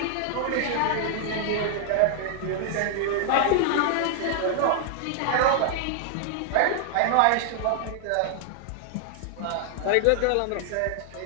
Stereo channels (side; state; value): both; different; correlation 0.00